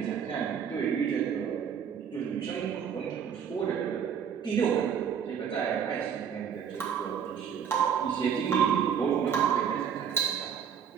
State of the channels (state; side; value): quieter; left; 7.8 dB